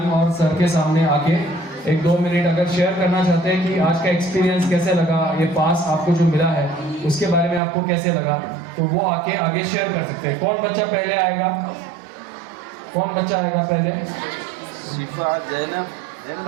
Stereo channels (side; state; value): left; drops out; at 7.6 s